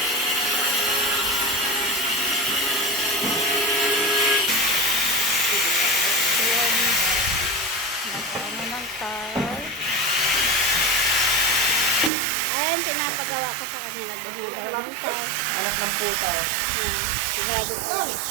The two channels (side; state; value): left; drops out; at 12.1 s